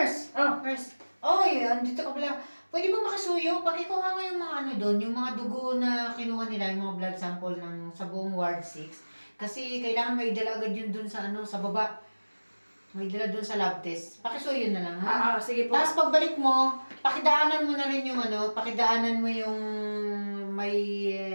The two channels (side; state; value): both; inverted; correlation -1.00